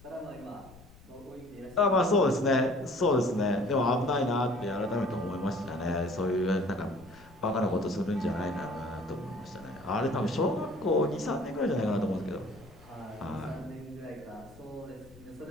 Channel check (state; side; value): noise; left; rumble, 23 dB below the sound